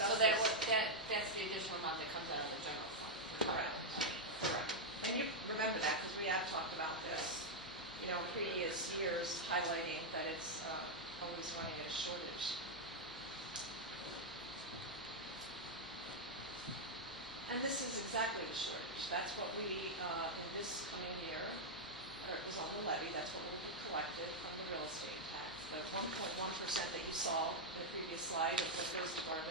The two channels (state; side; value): noise; left; hum, 23 dB below the sound